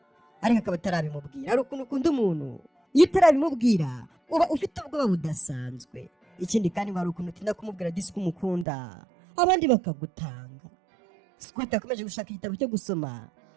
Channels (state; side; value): drops out; left; at 8.7 s